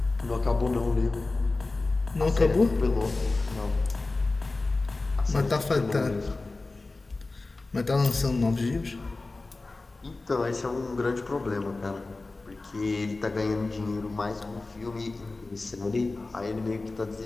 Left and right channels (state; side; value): quieter; right; 3.4 dB